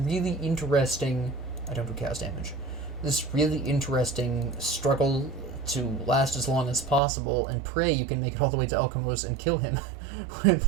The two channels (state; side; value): drops out; left; at 7.0 s